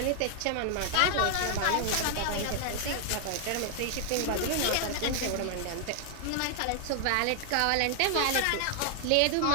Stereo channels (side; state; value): both; different; correlation 0.00